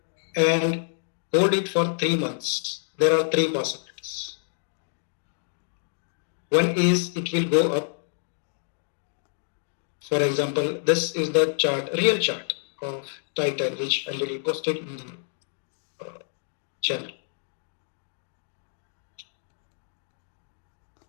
and hold it for 3 months, there are 3 possibilities. One is it will go up. For example, this is the chart, real chart of Titan, which already posted in the channel.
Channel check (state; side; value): silent; right; digital silence